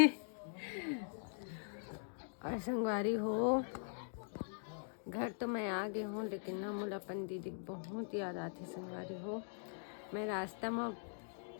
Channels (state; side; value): silent; right; digital silence